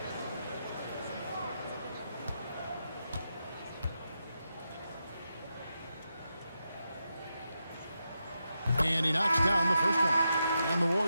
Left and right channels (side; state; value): both; inverted; correlation -0.86